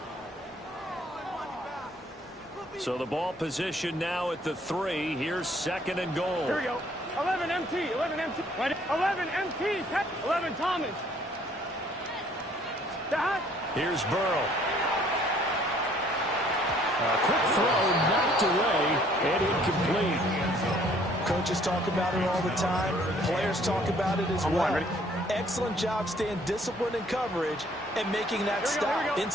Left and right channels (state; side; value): normal; both; correlation 0.60